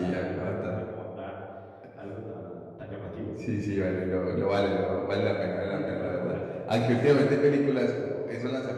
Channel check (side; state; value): both; identical; correlation 1.00